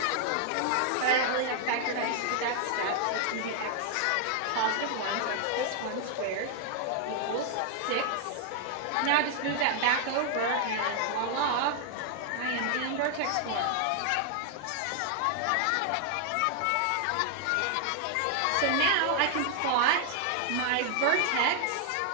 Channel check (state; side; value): different; both; correlation 0.00